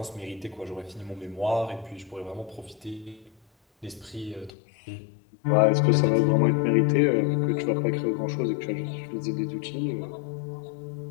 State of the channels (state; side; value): drops out; right; at 4.5 s